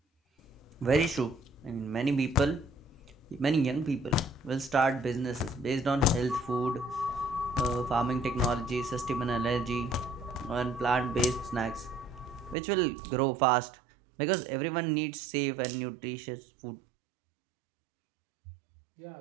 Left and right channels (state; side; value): drops out; left; at 12.6 s